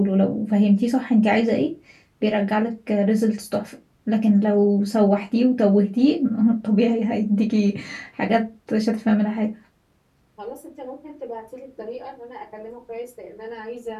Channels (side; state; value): both; identical; correlation 1.00